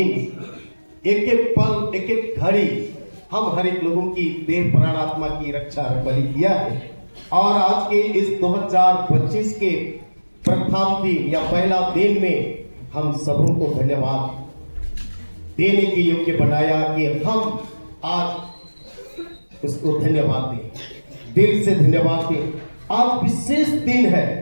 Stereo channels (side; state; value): both; inverted; correlation -1.00